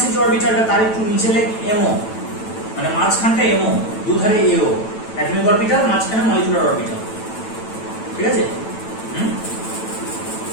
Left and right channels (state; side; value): late; right; 9.0 ms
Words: এর যে অরবিটালটা তার একটু নিচে লেখ MO, মানে মাঝখানটা MO, দুধারে AO, অ্যাটমিক অরবিটাল, মাঝখানে মলিকুলার অরবিটাল। ঠিক আছে?